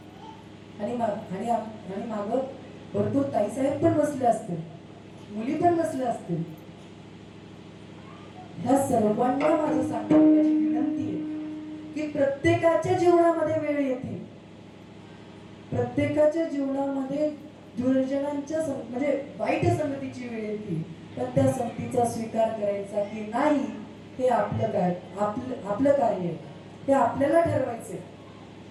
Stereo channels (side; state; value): both; identical; correlation 1.00